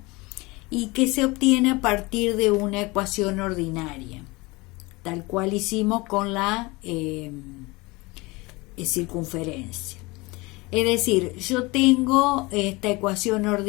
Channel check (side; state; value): right; quieter; 23.8 dB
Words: y que se obtiene a partir de una ecuación ordinaria, tal cual hicimos con la circunferencia. Es decir, yo tengo esta ecuación